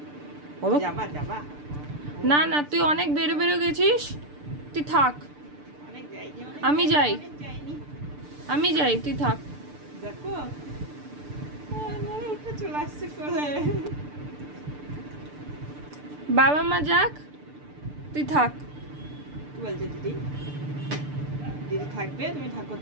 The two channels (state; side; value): late; left; 6.8 ms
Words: যাবা যাবা না না, তুই অনেক বেরো বেরো গেছিস, তুই থাক। আমি যাই, আমি যাই, তুই থাক। দেখো উঠে চলে আসছে কোলে। বাবা মা যাক, তুই থাক। কি বলছে দিদি? দিদি থাকবে, তুমি থাকো